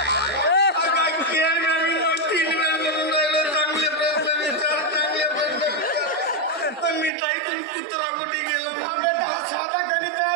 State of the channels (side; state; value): left; drops out; at 7.1 s